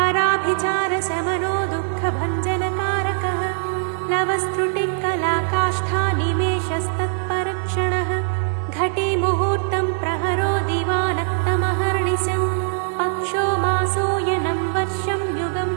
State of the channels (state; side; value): silent; left; digital silence